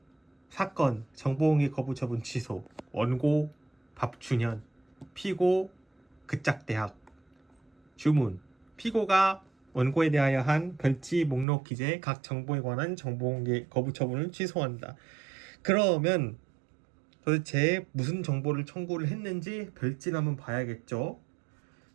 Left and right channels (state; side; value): drops out; left; at 11.5 s